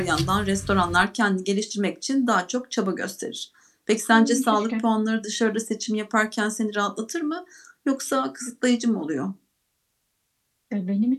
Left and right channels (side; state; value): both; identical; correlation 1.00